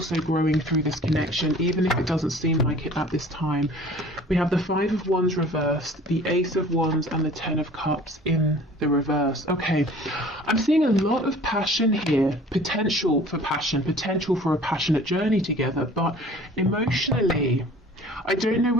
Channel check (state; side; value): normal; both; correlation 0.48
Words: growing through this connection, even if it doesn't seem like it at this time. We have the Five of Wands reversed, the Ace of Wands, and the Ten of Cups in the reverse. Okay, I'm seeing a lot of passion here, potential for passion, potential for a passionate journey together, but emotionally, I don't know